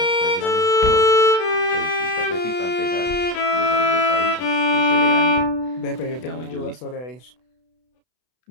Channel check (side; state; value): right; late; 32 ms